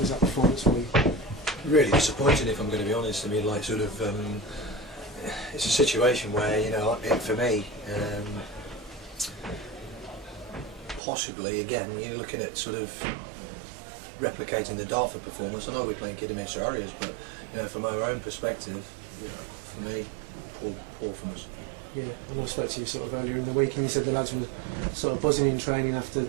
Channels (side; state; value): left; drops out; at 11.0 s